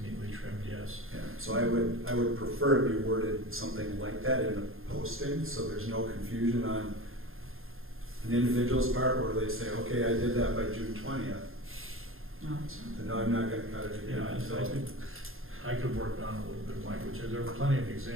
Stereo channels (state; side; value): late; left; 0.60 ms